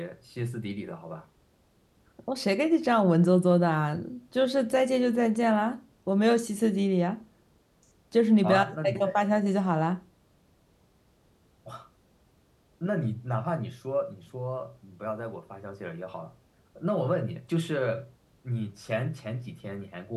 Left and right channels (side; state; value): both; identical; correlation 1.00